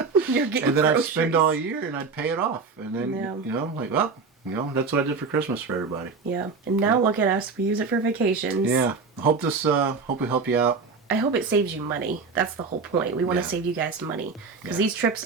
You're getting And then I'd groceries. spend all year and I'd pay it off. And then Yeah. you know, like, well, you know, that's what I did for Christmas for everybody. Yeah. And now look at us. We use it for vacations. Yeah. Hope we help you out. I hope it saves you money. That's the whole point. We want to Yeah. save you guys money because Yeah. these trips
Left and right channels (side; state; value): left; quieter; 4.7 dB